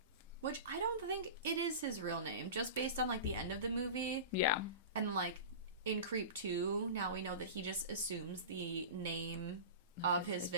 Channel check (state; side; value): inverted; both; correlation -0.30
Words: Which I don't think it is his real name, just based on, like, the end of the movie. Yeah. And, like, in Creep 2, now we know that he just assumes the name of his